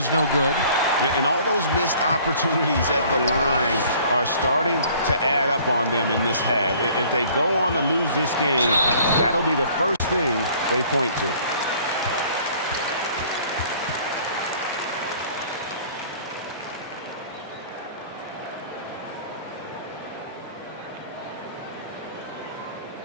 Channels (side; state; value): both; inverted; correlation -0.53